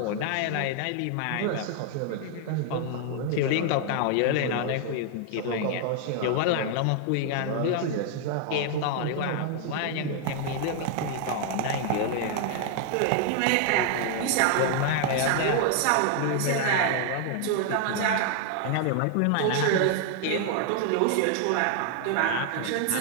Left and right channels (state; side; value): different; both; correlation 0.00